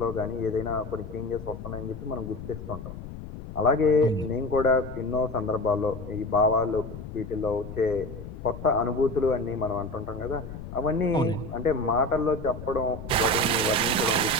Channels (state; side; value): noise; left; rumble, 11 dB below the sound